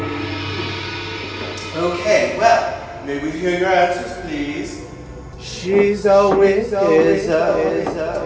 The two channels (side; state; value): both; identical; correlation 1.00